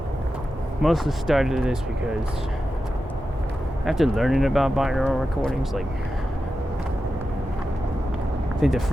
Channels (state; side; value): normal; both; correlation 0.91